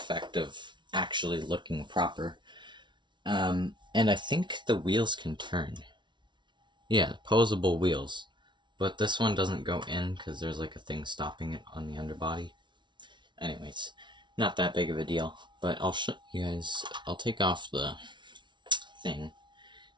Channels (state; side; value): late; left; 0.23 ms